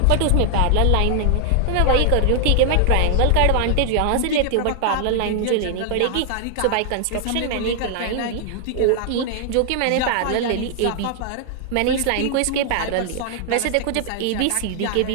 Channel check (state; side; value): different; both; correlation 0.00